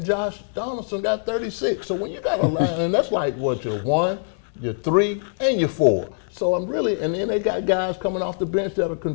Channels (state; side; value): silent; right; 63 dB below the other